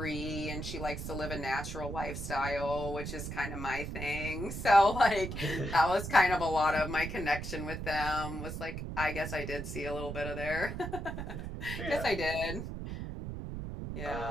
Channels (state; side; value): noise; right; rumble, 6 dB below the sound